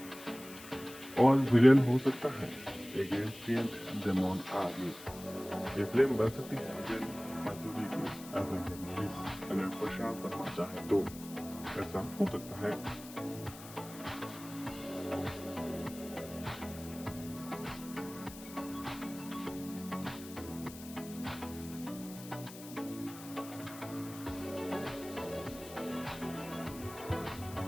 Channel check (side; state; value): left; noise; hiss, 15 dB below the sound